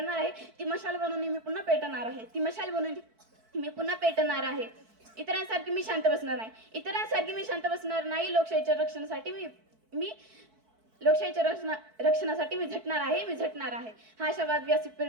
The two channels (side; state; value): left; late; 4.6 ms